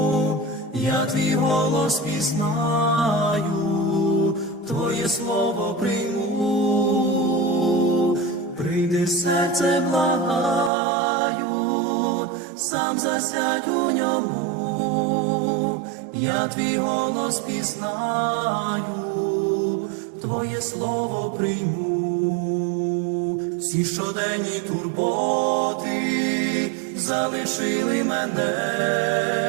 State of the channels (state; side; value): drops out; left; at 10.7 s